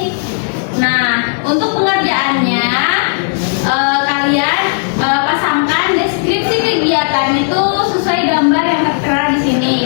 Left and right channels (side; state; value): right; silent; digital silence